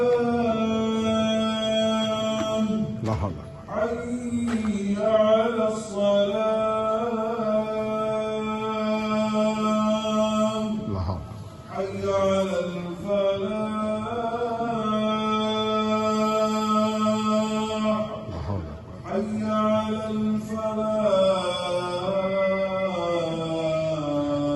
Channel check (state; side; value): identical; both; correlation 1.00